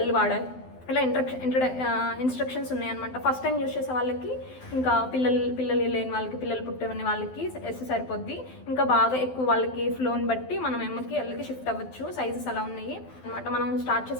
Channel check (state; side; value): late; right; 12 ms